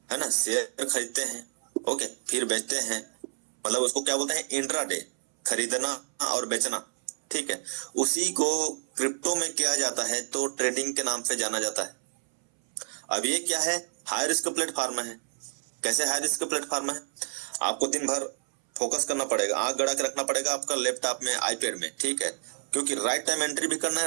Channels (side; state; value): left; silent; 59 dB below the other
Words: है ना, शेयर खरीदते हैं, ओके, फिर बेचते हैं, मतलब उसको क्या बोलते हैं, इंट्राडे, खरीदना और बेचना। ठीक है, उसी को क्रिप्टो में किया जाता है तो ट्रेडिंग के नाम से जाना जाता है। अब ये क्या है, हाई रिस्क प्लेटफॉर्म है। कैसे हाई रिस्क प्लेटफॉर्म है? आपको दिन भर फोकस करना पड़ेगा, आंख गड़ा के रखना पड़ेगा आपका लैपटॉप में, आईपैड में। ठीक है, क्योंकि राइट टाइम एंट्री भी करना